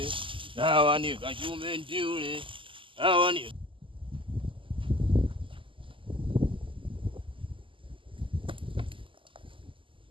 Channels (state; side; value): late; left; 0.25 ms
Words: dawa ni kachume ndiule, dawa ni